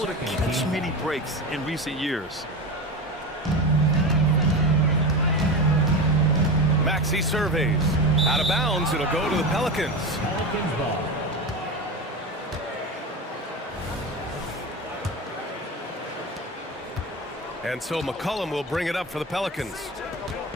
to catch many breaks in recent years. Maxey surveys. Out of bounds, it'll go to the Pelicans. Pelicans ball. And so McCollum will bring it up for the Pelicans.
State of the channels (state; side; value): normal; both; correlation 0.23